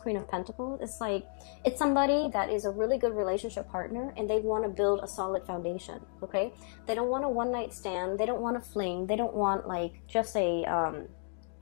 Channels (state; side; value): silent; right; 56 dB below the other